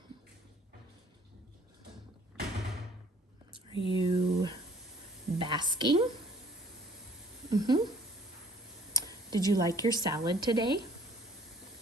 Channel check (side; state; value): both; normal; correlation 0.56